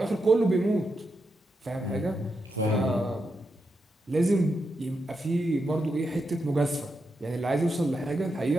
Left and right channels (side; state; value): both; normal; correlation 0.85